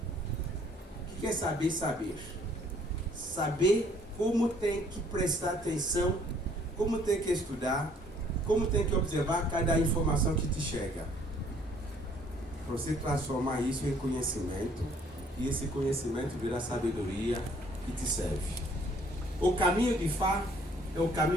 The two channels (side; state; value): both; normal; correlation 0.61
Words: O que é saber? Saber como tem que prestar atenção, como tem que estudar, como tem que observar cada informação que te chega. Para você transformar isso em conhecimento, e esse conhecimento virar sabedoria que te serve. O caminho de Fá é o